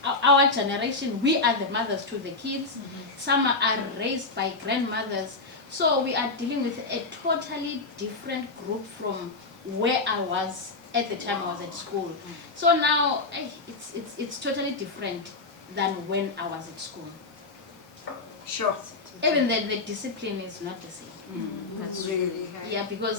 our generation. We are the mothers to the kids. Some are raised by grandmothers. So we are dealing with a totally different group from where I was at the time I was at school. So now it's totally different than when I was at school. Sure. Even the discipline is not the same. That's really, yeah,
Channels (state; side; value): quieter; right; 3.7 dB